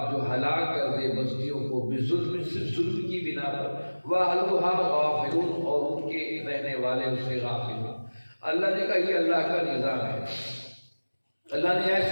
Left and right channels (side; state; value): both; inverted; correlation -1.00